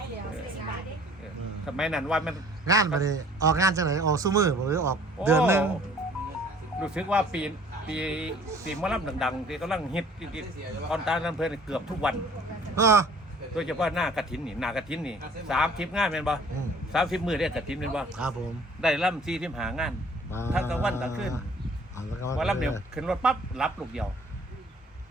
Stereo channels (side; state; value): both; normal; correlation 0.54